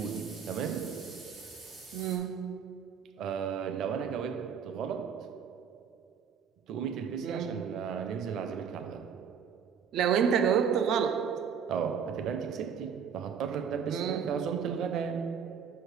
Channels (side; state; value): left; quieter; 7.1 dB